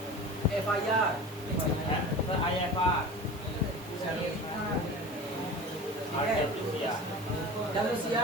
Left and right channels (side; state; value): both; normal; correlation 0.35